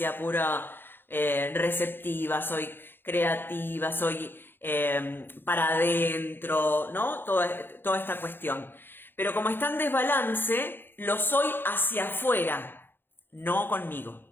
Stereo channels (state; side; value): late; right; 0.10 ms